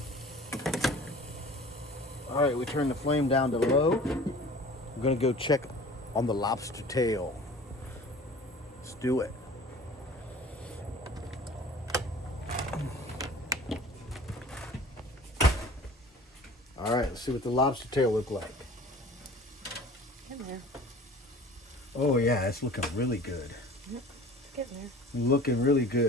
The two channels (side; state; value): both; normal; correlation 0.45